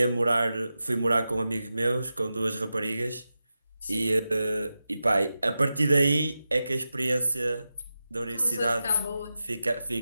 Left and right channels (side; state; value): both; inverted; correlation -0.92